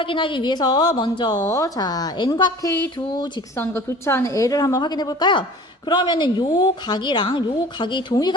위해서 먼저, 자, N과 K 두 직선과 교차하는 L을 한번 확인해 볼까요? 그러면은 요 각이랑 요 각이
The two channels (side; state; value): both; normal; correlation 0.43